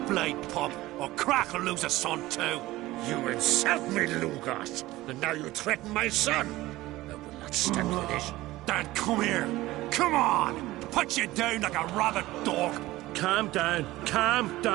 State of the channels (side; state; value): left; quieter; 17.7 dB